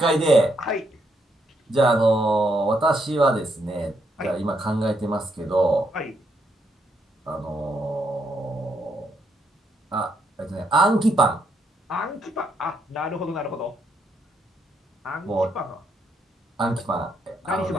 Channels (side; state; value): both; normal; correlation 0.76